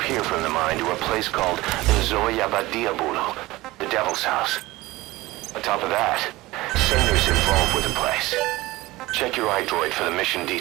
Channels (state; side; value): quieter; left; 19.3 dB